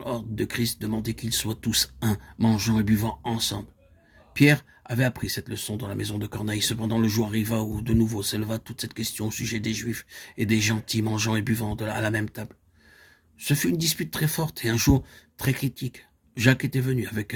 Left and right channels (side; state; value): both; identical; correlation 1.00